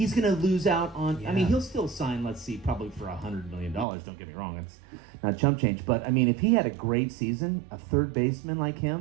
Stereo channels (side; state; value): left; drops out; at 3.9 s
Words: going to lose out on. Yeah. I mean, he'll still sign. Let's see, probably for $100 million. Don't get me wrong, it's not chump change. But I mean, if he had a great season, a third baseman like